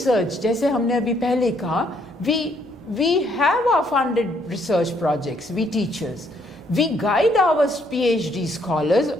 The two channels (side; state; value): right; noise; hum, 28 dB below the sound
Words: जैसे हमने अभी पहले कहा, we have our funded research projects, we teachers. We guide our PhD scholars